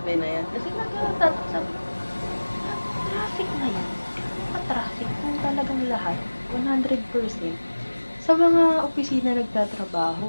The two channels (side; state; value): both; inverted; correlation -1.00